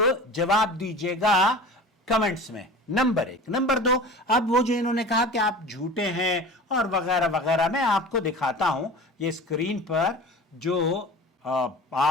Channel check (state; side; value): normal; both; correlation 0.37